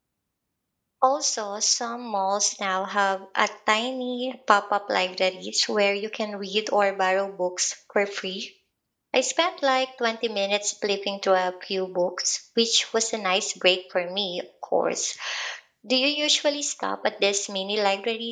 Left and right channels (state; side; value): identical; both; correlation 1.00